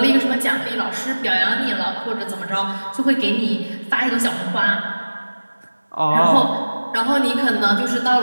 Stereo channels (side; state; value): both; inverted; correlation -1.00